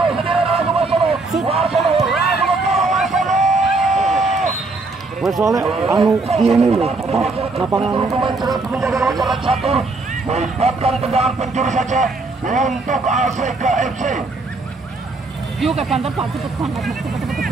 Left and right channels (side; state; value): left; quieter; 3.5 dB